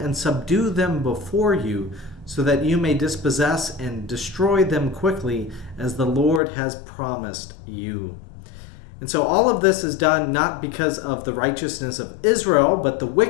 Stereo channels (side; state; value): right; drops out; at 6.4 s